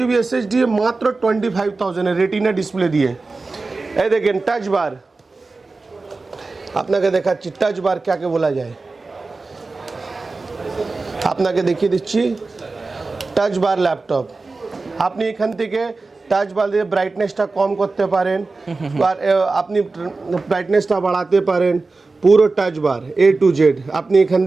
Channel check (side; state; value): left; quieter; 3.7 dB